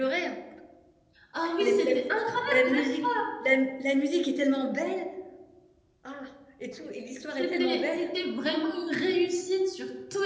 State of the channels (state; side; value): identical; both; correlation 1.00